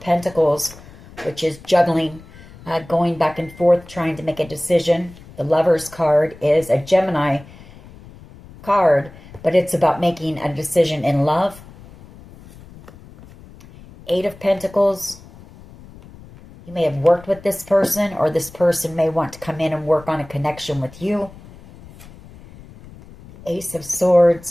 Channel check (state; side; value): noise; left; rumble, 20 dB below the sound